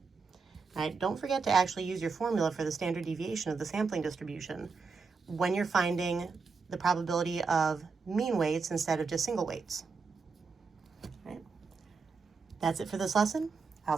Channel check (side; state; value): left; quieter; 4.9 dB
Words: Right? Don't forget to actually use your formula for the standard deviation of the sampling distribution when you're finding the probability of mean weights instead of just single weights. Right? That's it for this lesson. I'll